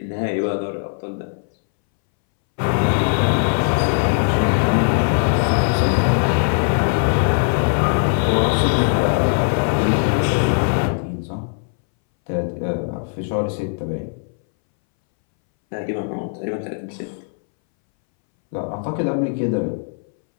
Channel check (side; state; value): right; silent; 64 dB below the other